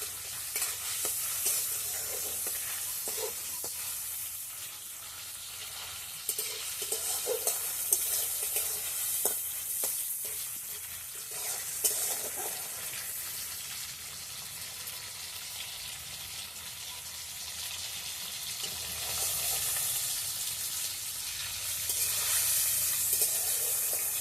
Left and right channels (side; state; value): both; normal; correlation 0.94